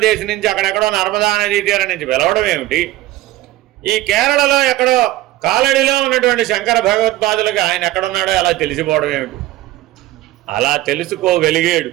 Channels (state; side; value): quieter; left; 16.3 dB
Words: నుంచి, అక్కడెక్కడో నర్మదా నదీ తీరం నుంచి పిలవడం ఏమిటి? ఈ కేరళలో ఎక్కడో కాలడిలో ఉన్నటువంటి శంకర భగవత్పాదులకి ఆయన ఎక్కడున్నాడో అలా తెలిసిపోవడం ఏమిటి? అలా తెలుసుకోగలిగాడు,